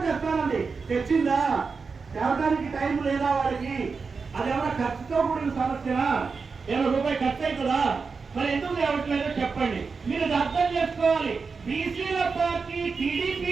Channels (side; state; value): left; quieter; 4.9 dB